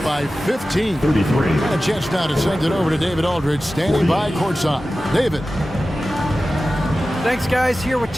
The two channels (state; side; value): normal; both; correlation 0.95